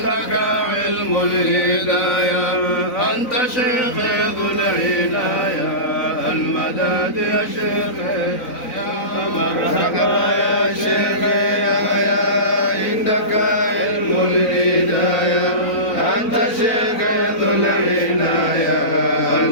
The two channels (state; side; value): late; right; 4.0 ms